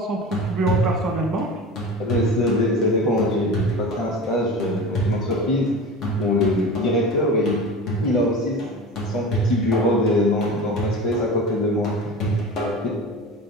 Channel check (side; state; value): both; normal; correlation 0.32